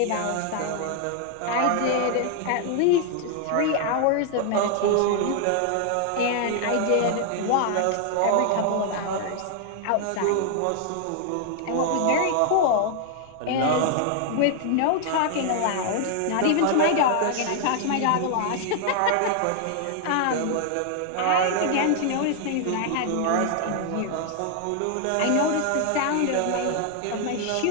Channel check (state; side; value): different; both; correlation 0.00